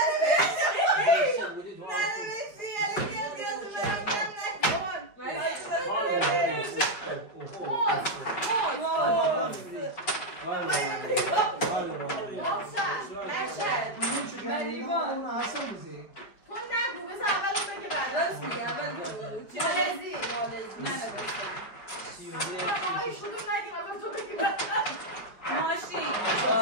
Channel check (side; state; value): right; late; 5.1 ms